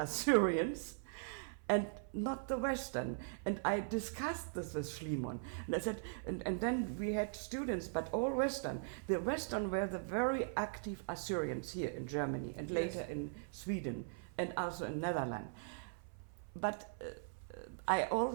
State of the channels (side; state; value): left; silent; 51 dB below the other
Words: and not the Western. And I discussed this with Schliemann. And I said, and then we had students, but all Western. The Western were the very active Assyrians here in Germany, and later in Sweden, and also in Netherlands. But I